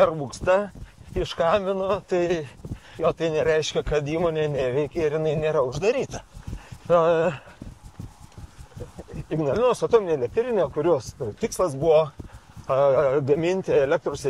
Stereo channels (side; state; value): both; identical; correlation 1.00